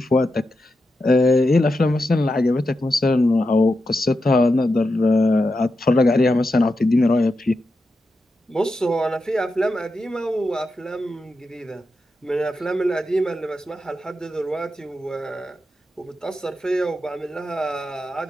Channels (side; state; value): both; normal; correlation 0.88